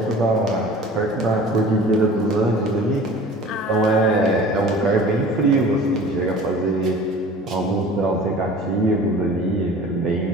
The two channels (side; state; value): both; normal; correlation 0.43